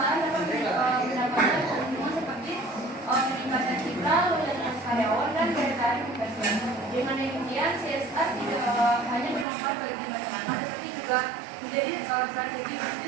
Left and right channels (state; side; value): drops out; left; at 9.5 s